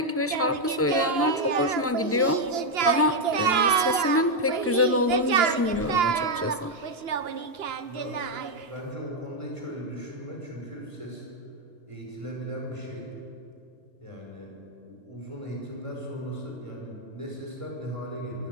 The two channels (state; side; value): normal; both; correlation 0.01